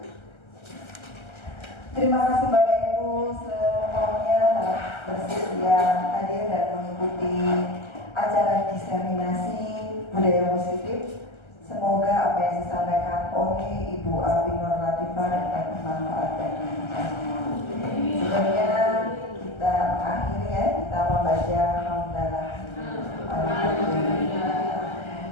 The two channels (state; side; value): late; right; 1.3 ms